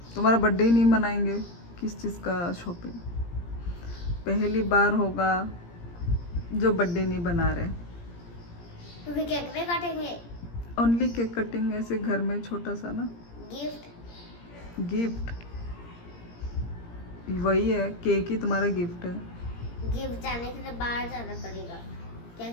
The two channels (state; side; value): late; right; 17 ms